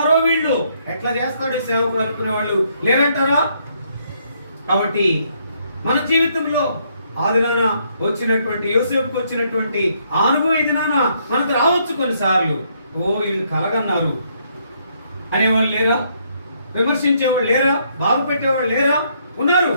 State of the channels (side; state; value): both; inverted; correlation -0.71